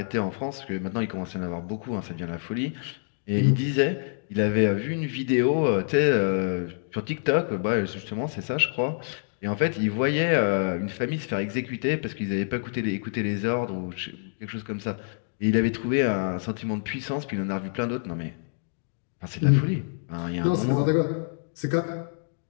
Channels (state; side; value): silent; right; digital silence